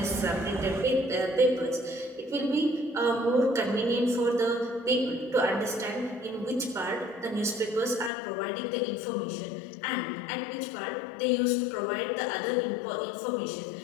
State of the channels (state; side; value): drops out; right; at 8.1 s